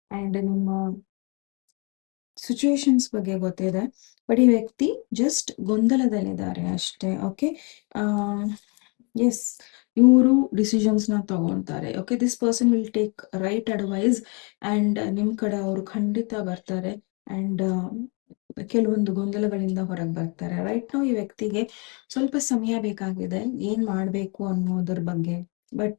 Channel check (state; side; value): quieter; right; 33.0 dB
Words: ಆ್ಯಂಡ್ ನಿಮ್ಮ ಸಿಚುವೇಶನ್ಸ್ ಬಗ್ಗೆ ಗೊತ್ತಿದೆ, ಬಟ್ ಈ ವ್ಯಕ್ತಿ ಜಸ್ಟ್ ಗೊಂದಲದಲ್ಲಿದ್ದಾರೆ ಅಷ್ಟೇ. ಓಕೆ, ಎಸ್, ಇವರು ಡಿಸಿಷನ್ಸ್ನ ತಗೊತಾರೆ. Okay, this person will take right advice and ನಿಮ್ಮ ಕಡೆ ಅವರು ಖಂಡಿತ ಬರ್ತಾರೆ ಆ್ಯಂಡ್ ಕೆಲವೊಂದು ಗೊಂದಲಗಳಿಂದ ಹೊರಗೆ ಬರ್ತಾರೆ. ರೈಟ್ ನಾವು ಈ ವ್ಯಕ್ತಿಗೆ ಸ್ವಲ್ಪ ಸಮಯ ಬೇಕಾಗಿದೆ ಏನು ಮಾಡಬೇಕು ಅನ್ನೋದ್ರ ಬಗ್ಗೆ, ಬಟ್